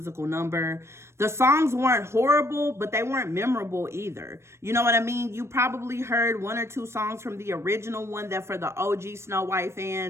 number. The songs weren't horrible, but they weren't memorable either. You know what I mean? You probably heard one or two songs from the original one that for the OG SnowWhite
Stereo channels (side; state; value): left; late; 0.13 ms